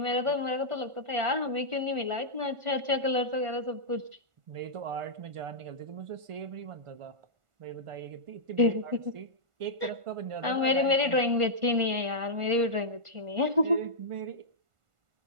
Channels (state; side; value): late; left; 1.4 ms